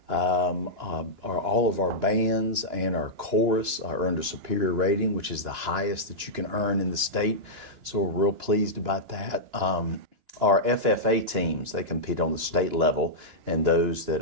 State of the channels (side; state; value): left; late; 2.9 ms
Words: All of our bands and our chorus earned a superior rating, which is the highest that you can earn in the state. So we're real pleased about that. Our FFA teams, they compete on the state level, and those that